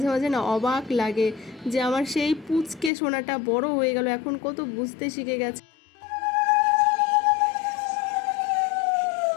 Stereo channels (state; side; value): drops out; right; at 2.9 s